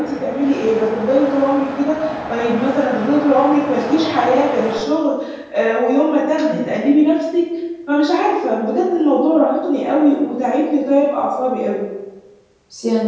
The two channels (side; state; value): both; identical; correlation 1.00